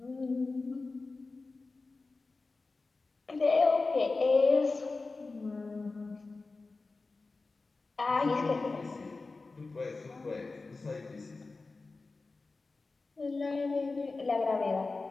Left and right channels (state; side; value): quieter; right; 3.7 dB